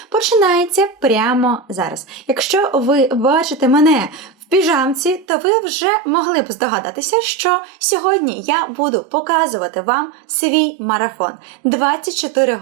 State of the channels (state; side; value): drops out; left; at 5.2 s